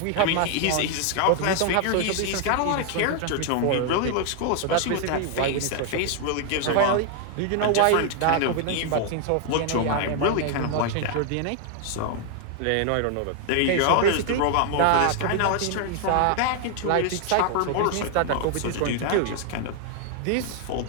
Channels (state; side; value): different; both; correlation 0.00